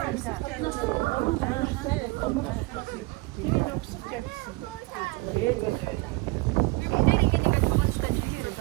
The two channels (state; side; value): quieter; left; 23.4 dB